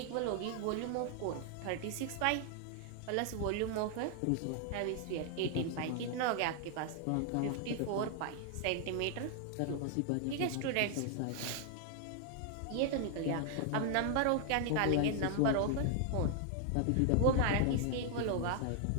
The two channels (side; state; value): both; different; correlation 0.00